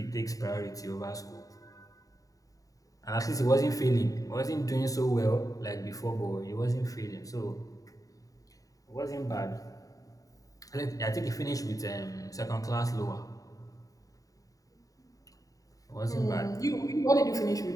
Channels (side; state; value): right; late; 0.17 ms